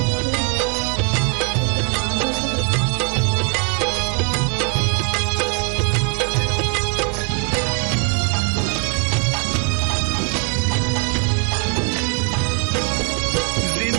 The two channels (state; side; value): quieter; left; 35.9 dB